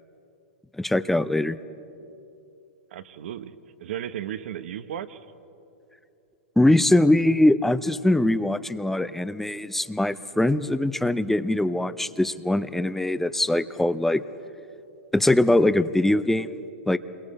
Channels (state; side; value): normal; both; correlation 0.91